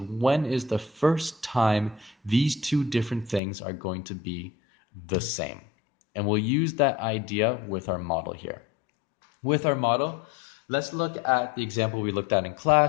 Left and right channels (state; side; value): drops out; right; at 3.4 s